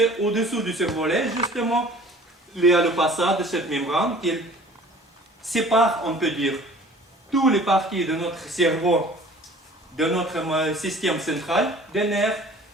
au-dessous du cervelet, justement, il y a le passage de cette membrane qui sépare, on peut dire, toutes les parties de notre cerveau, de notre système central des nerfs,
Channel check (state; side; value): normal; both; correlation 0.48